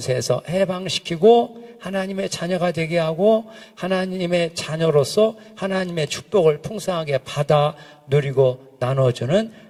해방시키고 하나님의 자녀가 되게 하고, 하나님의 자녀로서 하나님의 축복을 풍성하게 받아 누리고 나눠주는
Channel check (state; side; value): identical; both; correlation 1.00